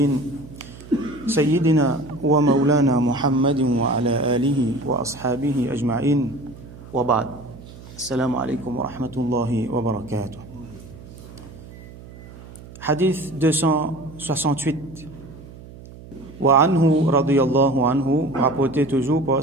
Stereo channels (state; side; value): noise; right; hum, 18 dB below the sound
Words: سيدنا ومولانا محمد وعلى آله وأصحابه أجمعين وبعد السلام عليكم ورحمة الله وبركاته. Hadith 268 وعنه رضي الله عنه, rapporté toujours